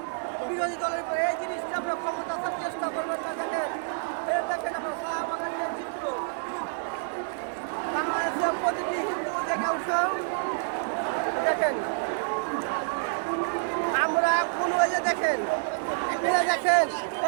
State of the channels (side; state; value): left; silent; 59 dB below the other